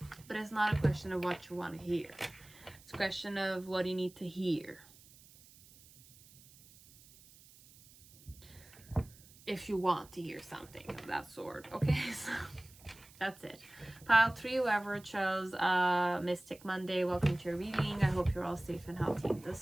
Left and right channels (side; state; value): right; noise; hiss, 23 dB below the sound